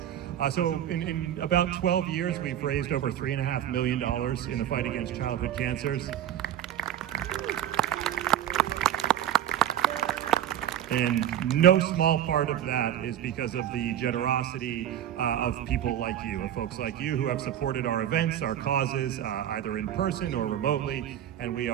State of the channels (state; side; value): quieter; left; 11.0 dB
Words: So in about 12 years, we've raised over $3.5 million in the fight against childhood cancers. And no small part of that is because of the generosity of people like you, of folks like you who have supported our events, our causes, either in person or remotely, and we